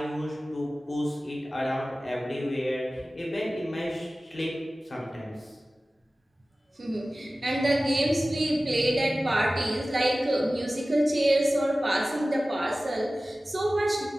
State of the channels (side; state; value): both; normal; correlation 0.96